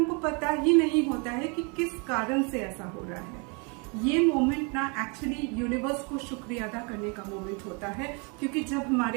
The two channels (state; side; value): quieter; left; 33.1 dB